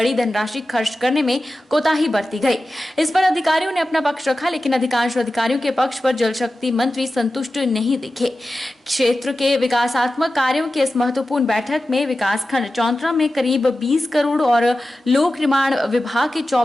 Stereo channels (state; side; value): normal; both; correlation 0.94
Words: धनराशि खर्च करने में कोताही बरती गई। इस पर अधिकारियों ने अपना पक्ष रखा, लेकिन अधिकांश अधिकारियों के पक्ष पर जल शक्ति मंत्री संतुष्ट नहीं दिखे। क्षेत्र के विकासात्मक कार्यों की इस महत्वपूर्ण बैठक में विकासखंड चौंतरा में करीब 20 करोड़ और लोक निर्माण विभाग के